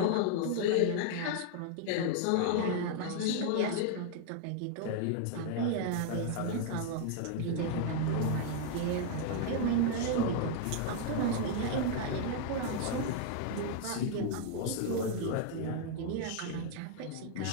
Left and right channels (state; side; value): different; both; correlation 0.00